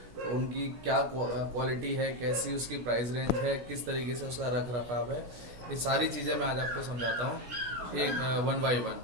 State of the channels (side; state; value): left; late; 17 ms